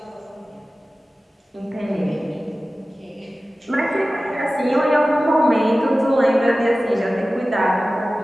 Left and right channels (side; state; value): both; normal; correlation 0.96